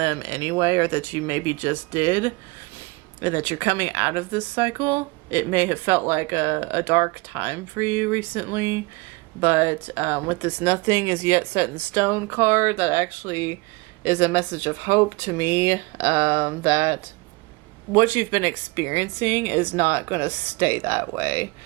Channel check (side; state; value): left; quieter; 25.8 dB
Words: anyway, or that you maybe just did, and that you're coming out of this cycle. It may have felt like a dark time for you recently, but with this nothing is yet set in stone card, that actually is a message of hope to me, that what you've been experiencing is not going to stay that way.